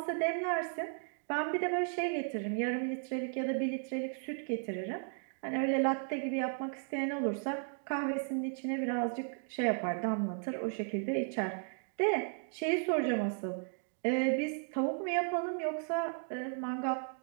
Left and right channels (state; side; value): silent; left; 54 dB below the other